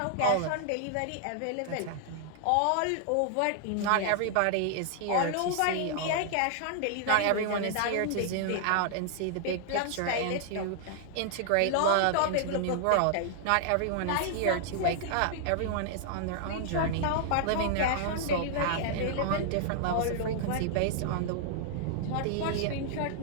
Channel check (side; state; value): both; different; correlation -0.01